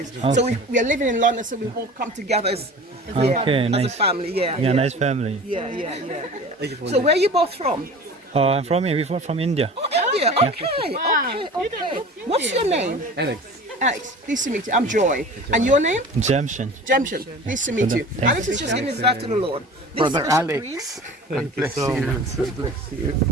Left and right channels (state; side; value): normal; both; correlation 0.39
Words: Yeah. Okay. So we are living in London, so we all come together as a family. Yeah, nice family. Yeah. So where are you both from? I'm from here. We're from India. Oh, India. Okay. What's your name? Anix. Alex, pleased to meet you. I'm Joy. And your name? Jamshin. Jemshin. Pleased to meet you. Thank Alex is just giving his life to the Lord. This Brother is Bishop Alex, Green. God bless you. God bless you.